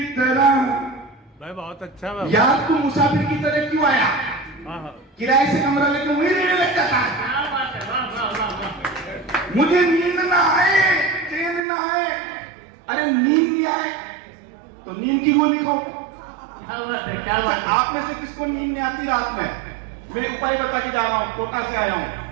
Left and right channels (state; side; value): drops out; left; at 11.6 s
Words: तरह। भाई बहुत अच्छा है यार तू मुसाफिर की तरह क्यों आया? किराए से कमरा लेकर वही रहने लग जाता है। मुझे नींद ना आए, चैन ना आए। अरे नींद नहीं आए तो नींद की गोली खाओ। क्या बात है? आप में से किसको नींद नहीं आती रात में? मैं उपाय बता के जा रहा हूँ, कोटा से आया हूँ।